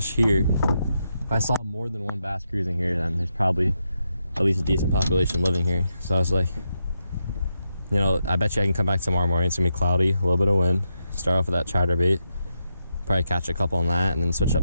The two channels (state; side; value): inverted; both; correlation -0.84